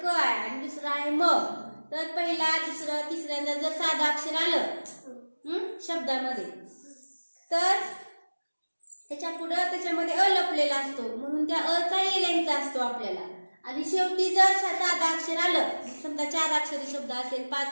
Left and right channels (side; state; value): both; inverted; correlation -1.00